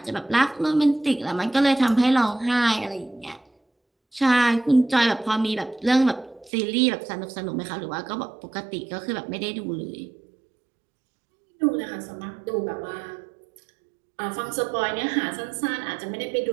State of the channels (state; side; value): drops out; left; at 6.5 s